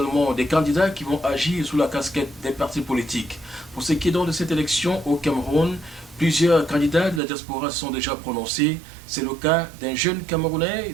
des candidats qui vont agir sous la casquette des partis politiques. Pour ce qui est donc de cette élection au Cameroun, plusieurs candidats de la diaspora se sont déjà prononcés. C'est le cas d'un jeune Camerounais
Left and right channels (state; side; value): drops out; left; at 7.2 s